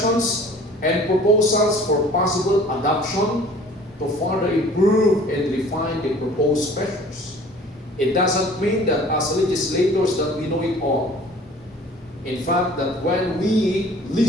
and proposals for possible adoption to further improve and refine the proposed measures. It doesn't mean that as legislators that we know it all. In fact, that when we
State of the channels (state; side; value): normal; both; correlation 0.49